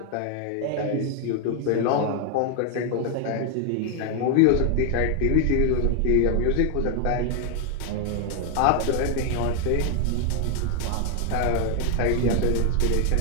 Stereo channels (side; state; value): both; different; correlation 0.00